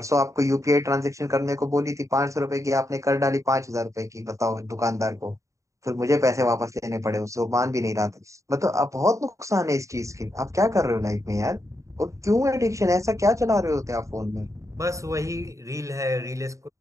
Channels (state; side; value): late; left; 0.15 ms